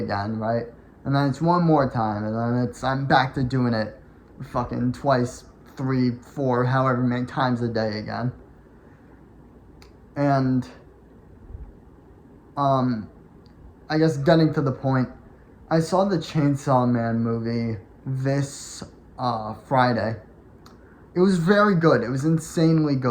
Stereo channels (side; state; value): both; identical; correlation 1.00